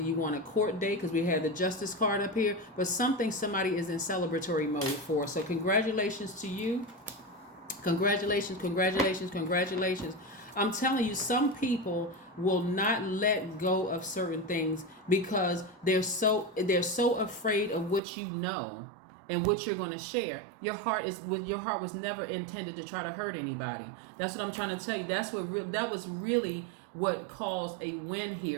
want a court date, because we had the Justice card up here, but somebody is in celebratory mode for. So congratulations to you. Congratulations, congratulations, congratulations. I'm telling you, some people will not let go of certain things because they're so afraid of what you know and what you're going to share. Your heart was never intended to try to hurt anybody. That's what I'm trying to tell you. That was really what caused a win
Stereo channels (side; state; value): left; drops out; at 18.0 s